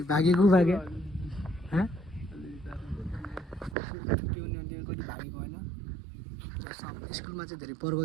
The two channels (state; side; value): drops out; left; at 3.8 s